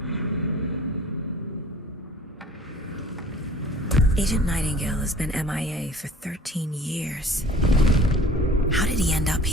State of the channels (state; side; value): normal; both; correlation 0.47